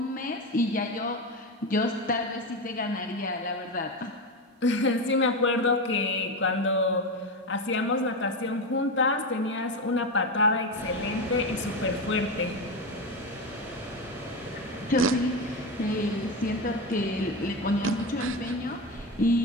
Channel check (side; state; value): both; normal; correlation 0.17